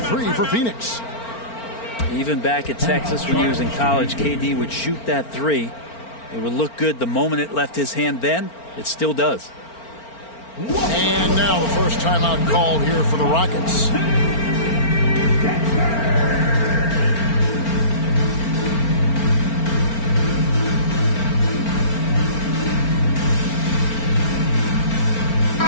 for Pheonix. Even back at Texas when he was in college, KD would shoot that 3. It would look good the moment it left his hand then. It still does. And now the first timeout called here for the Rockets.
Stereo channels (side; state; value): right; late; 4.4 ms